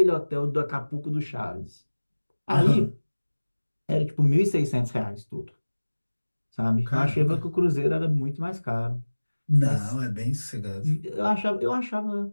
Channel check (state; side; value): inverted; both; correlation -1.00